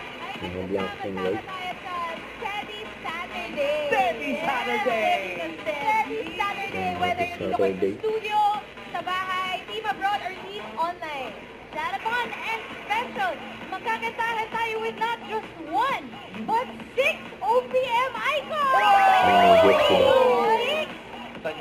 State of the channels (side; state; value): both; identical; correlation 1.00